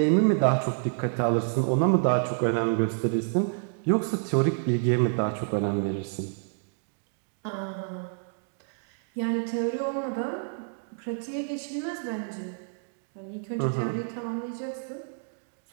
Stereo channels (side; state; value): left; silent; digital silence